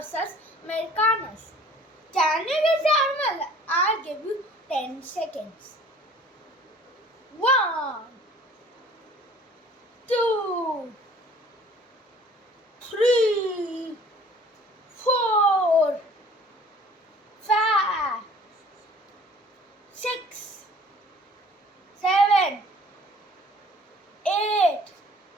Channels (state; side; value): normal; both; correlation 0.51